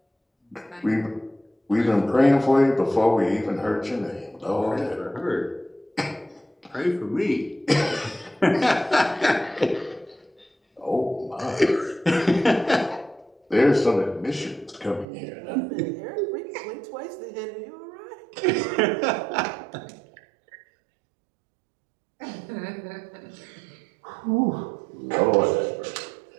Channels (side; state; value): left; drops out; at 15.1 s